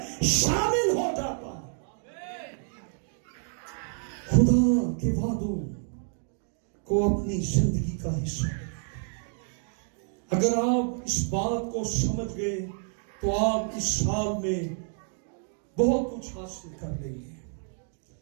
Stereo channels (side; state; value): left; silent; 55 dB below the other